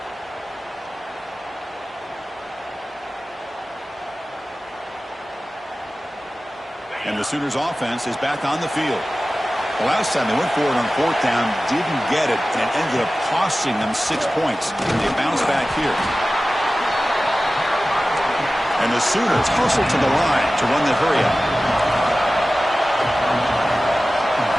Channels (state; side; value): normal; both; correlation 0.96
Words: And the Sooners offense is back on the field. The last time they went for it on fourth down, didn't get it, and it ended up costing them 6 points. And they bounce back here. And the Sooners hustle to the line to run the hurry up.